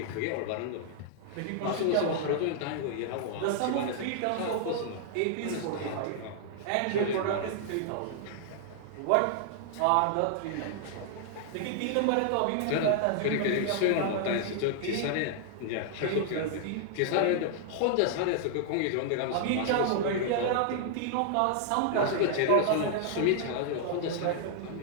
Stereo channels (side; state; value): both; different; correlation -0.01